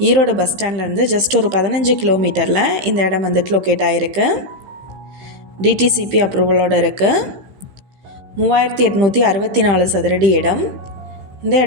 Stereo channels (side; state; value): left; late; 16 ms